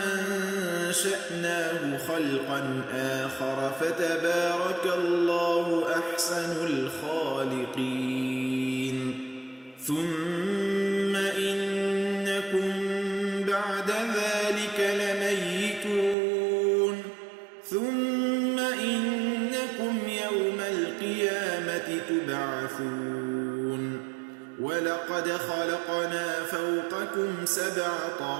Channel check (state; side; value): drops out; left; at 16.2 s